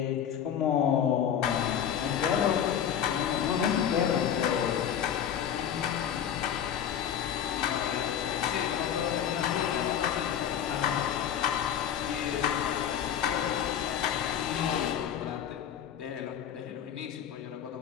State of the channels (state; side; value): quieter; right; 9.2 dB